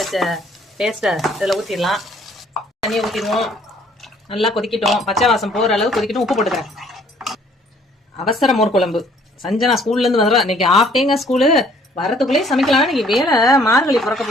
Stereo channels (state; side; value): normal; both; correlation 0.60